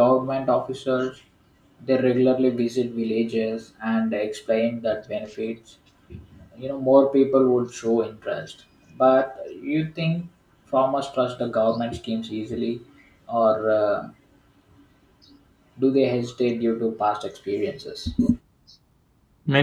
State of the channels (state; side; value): identical; both; correlation 1.00